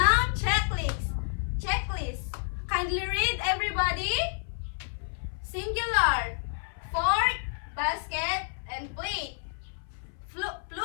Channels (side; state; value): right; silent; 58 dB below the other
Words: Singular, fork, basket, and plate.